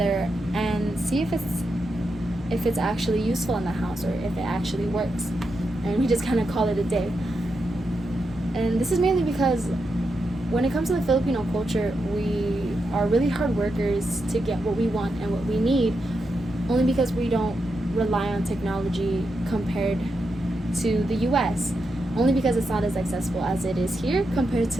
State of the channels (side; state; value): both; normal; correlation 0.86